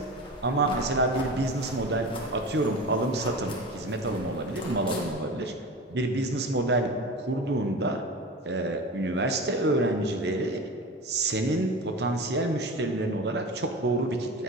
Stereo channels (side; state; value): both; normal; correlation 0.31